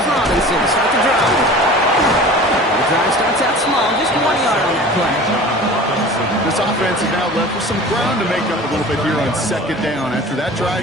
Robinson to start the drive. The drive starts out small, just 1 yard on that play. This offense is now left with some ground to make up a little bit here on 2nd down. After that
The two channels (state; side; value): normal; both; correlation 0.40